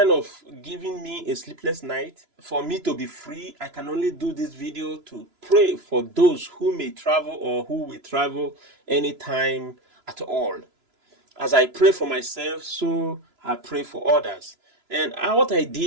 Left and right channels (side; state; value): left; late; 3.0 ms